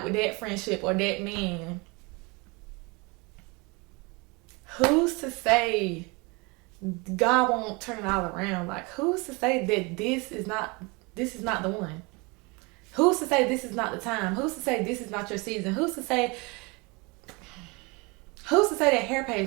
with that friendship or that man. Who's to say God won't turn it all around? Like, who's to say that this is not the one? Who's to say this is not the time? Who's to say this is not your season? Who's to say that hair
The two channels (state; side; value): quieter; left; 27.7 dB